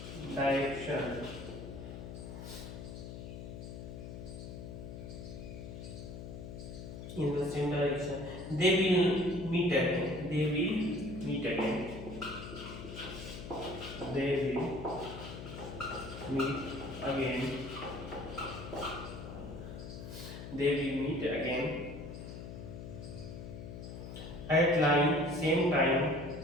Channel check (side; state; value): left; noise; hum, 9 dB below the sound